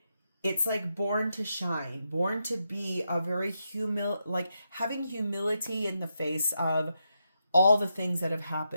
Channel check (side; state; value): both; inverted; correlation -0.84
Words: it's like born to shine, born to be a very like having humility in the face of all the things that have